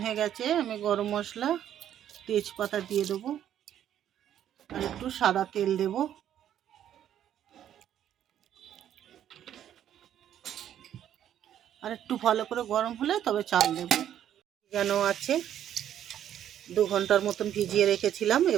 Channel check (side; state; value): left; quieter; 10.6 dB